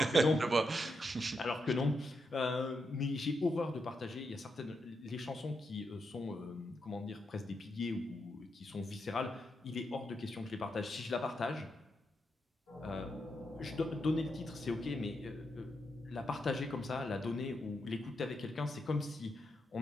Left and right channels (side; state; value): both; normal; correlation 0.83